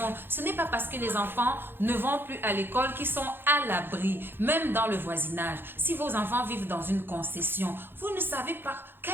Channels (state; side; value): late; left; 0.10 ms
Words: Ce n'est pas parce que les enfants ne vont plus à l'école qu'ils sont à l'abri, même dans le voisinage. Si vos enfants vivent dans une concession, vous ne savez pas